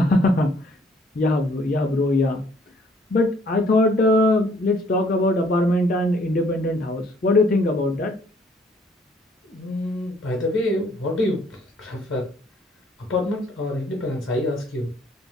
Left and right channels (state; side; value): normal; both; correlation 0.62